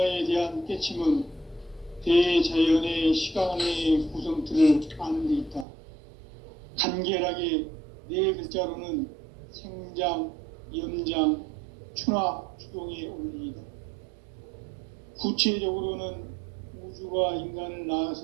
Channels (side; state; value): left; drops out; at 5.7 s